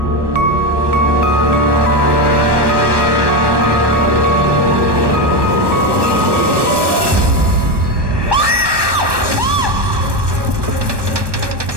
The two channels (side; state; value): left; late; 1.2 ms